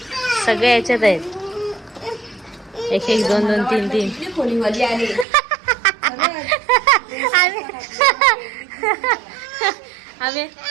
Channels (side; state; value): left; drops out; at 5.2 s